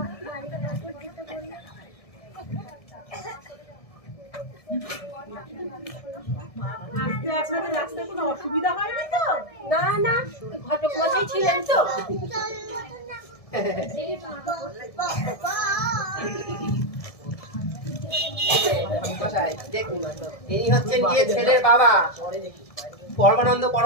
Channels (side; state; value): right; late; 1.7 ms